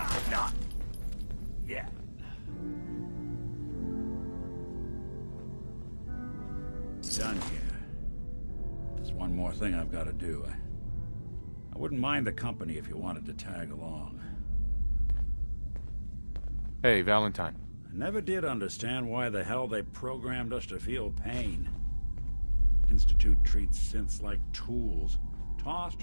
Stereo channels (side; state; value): both; inverted; correlation -1.00